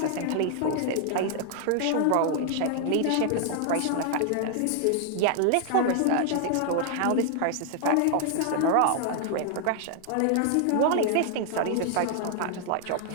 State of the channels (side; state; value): both; different; correlation 0.00